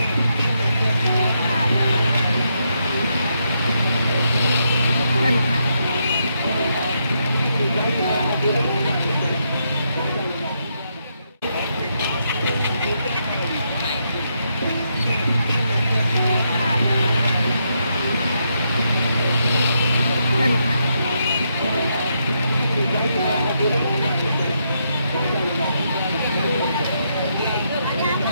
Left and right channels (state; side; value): inverted; both; correlation -0.80